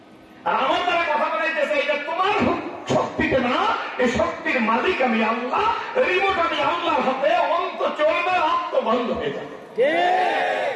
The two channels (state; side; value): identical; both; correlation 1.00